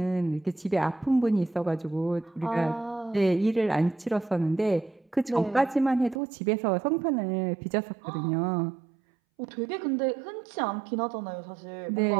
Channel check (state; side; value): drops out; left; at 6.2 s